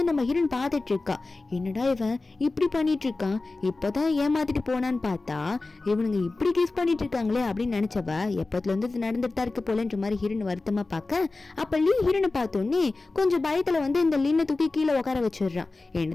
நம்ம ஹீரோன் பார்த்துட்டு இருக்கா, என்னடா இவன் இப்படி பண்ணிட்டு இருக்கான், இப்பதான் ஏமாத்திட்டு போனான்னு பார்த்தா இவனுங்க இப்படி கிஸ் பண்ணிட்டு இருக்காங்களே அப்படின்னு நினைச்சவ எப்பத்துல இருந்து நடந்துட்டு தான் இருக்கு போலன்ற மாதிரி ஹீரோன் வருத்தமா பார்க்க. அப்ப லீ ஹீரோனை பார்த்தோன்னே கொஞ்சம் பயத்துல வந்து இந்த லின்னை தூக்கி கீழே உட்கார வச்சிடுறான்.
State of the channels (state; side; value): quieter; right; 3.4 dB